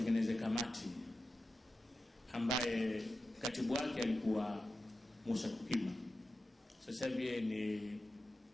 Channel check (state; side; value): normal; both; correlation 0.91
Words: kamati ambaye katibu wake alikuwa Musa Kukima. Sasa hivi